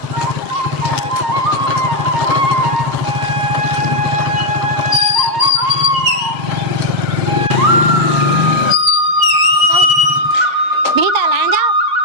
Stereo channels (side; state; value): left; late; 7.5 ms